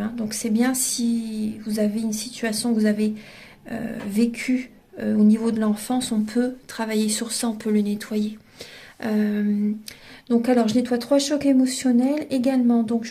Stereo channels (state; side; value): identical; both; correlation 1.00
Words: Donc c'est bien si vous avez une situation que vous avez vécue au niveau de l'enfance, on peut travailler sur ça, on peut le nettoyer. Donc alors je nettoie 3 chocs émotionnels également, donc